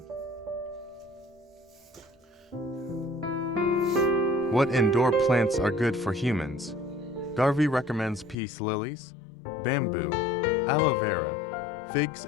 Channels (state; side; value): drops out; right; at 8.3 s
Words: What indoor plants are good for humans? Garvey recommends peace lilies, bamboo, aloe vera, figs,